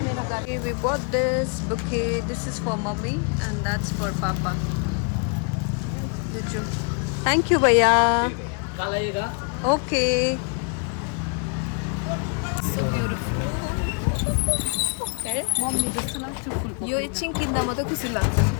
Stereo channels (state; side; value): quieter; right; 39.2 dB